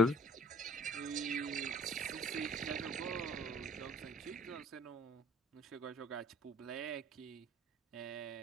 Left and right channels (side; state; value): both; normal; correlation 0.52